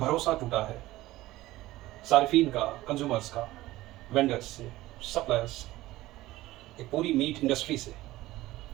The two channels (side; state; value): left; quieter; 17.0 dB